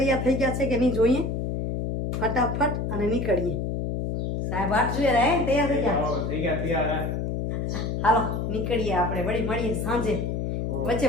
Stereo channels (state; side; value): noise; left; hum, 2 dB below the sound